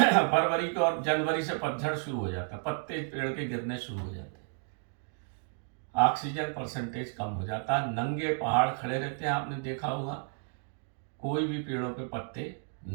को और जनवरी से पतझड़ शुरू हो जाता है, पत्ते पेड़ के गिरने शुरू हो जाते हैं, ऑक्सीजन परसेंटेज कम हो जाता है, नंगे पहाड़ खड़े रहते हैं। आपने देखा होगा, कोई भी पेड़ों पे पत्ते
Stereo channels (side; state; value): left; silent; 57 dB below the other